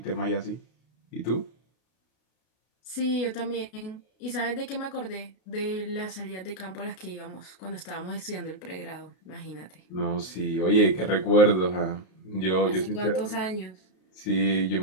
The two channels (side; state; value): right; late; 33 ms